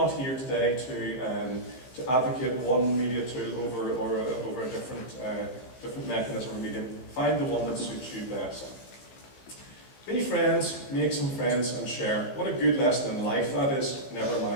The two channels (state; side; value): late; right; 16 ms